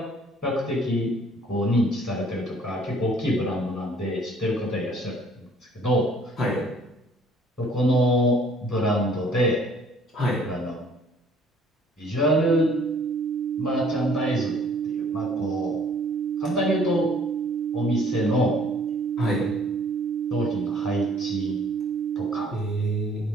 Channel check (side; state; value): both; normal; correlation 0.57